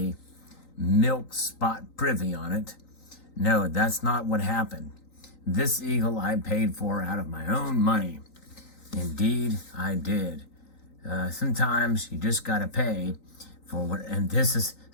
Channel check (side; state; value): right; late; 3.9 ms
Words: milk spot privy on it. No, that's not what happened. This eagle I paid for out of my own money. Indeed, I did. Sometimes you just gotta pay for what, and this is